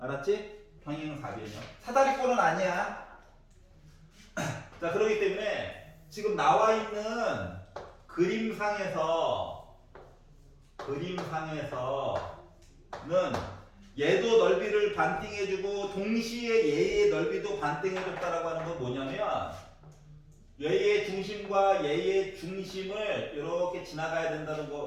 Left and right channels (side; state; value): both; identical; correlation 1.00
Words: 평행사변형. 사다리꼴은 아니야. 자, 그렇기 때문에 지금 나와 있는 그림상에서는 얘도 넓이를 반띵해주고 동시에 얘의 넓이도 반띵해줬다라고 하는 건 뭐냐면 얘의 중심과 얘의 중심을 이렇게 지나가야 된다는